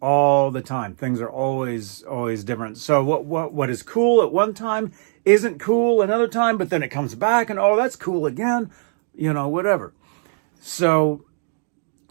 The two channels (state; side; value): silent; left; digital silence